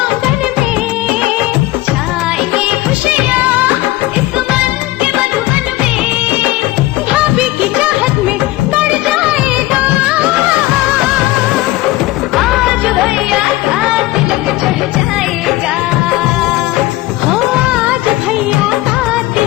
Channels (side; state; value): right; quieter; 17.7 dB